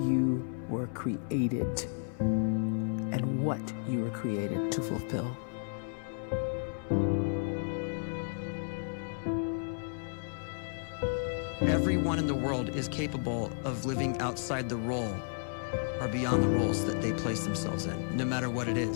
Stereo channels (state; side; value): silent; right; 56 dB below the other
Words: you were created and what you were created to fulfill. Everyone in the world is capable of living outside the role or beyond the roles that they place themselves in, no matter what it